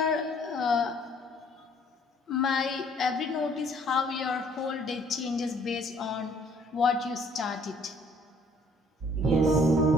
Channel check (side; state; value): both; normal; correlation 0.60